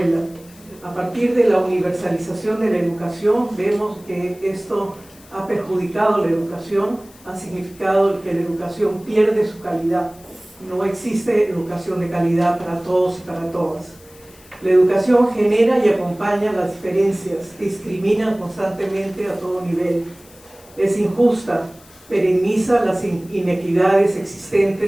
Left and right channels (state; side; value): noise; left; hiss, 25 dB below the sound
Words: A partir de la universalización de la educación, vemos que esto ha perjudicado la educación, ha significado que la educación pierde su calidad. No existe educación de calidad para todos y para todas. La educación genera y acompaña las diferencias, discrimina constantemente a todo nivel. Es injusta, perenniza las inequidades